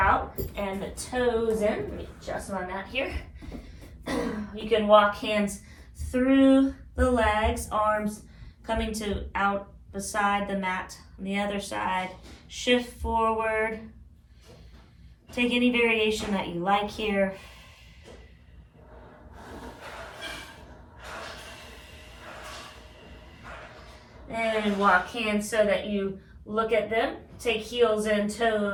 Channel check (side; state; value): both; identical; correlation 1.00